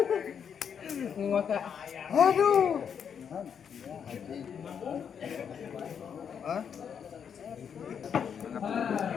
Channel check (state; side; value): quieter; right; 7.5 dB